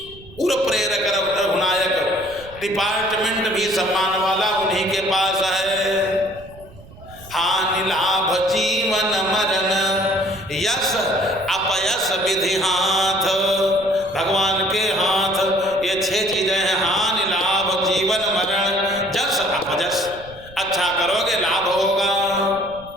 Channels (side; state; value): right; noise; rumble, 20 dB below the sound